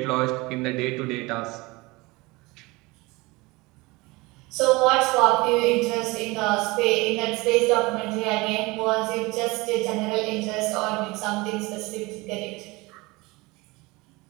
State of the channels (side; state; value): left; quieter; 23.4 dB